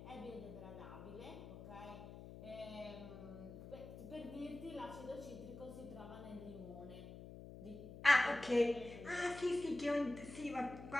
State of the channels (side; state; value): left; noise; hum, 12 dB below the sound